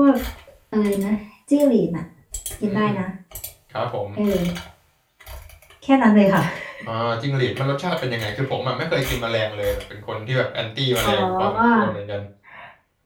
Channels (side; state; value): both; identical; correlation 1.00